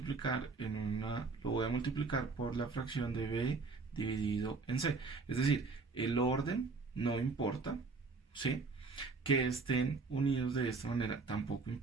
por la fracción de B dividido en C. Es decir, el orden no importa, ¿sí? Que estén unidos de esta manera tampoco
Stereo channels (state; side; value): quieter; left; 4.2 dB